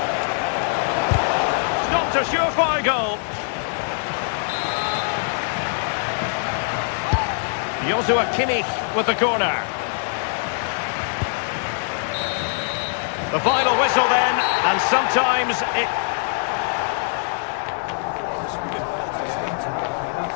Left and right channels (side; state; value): right; silent; 64 dB below the other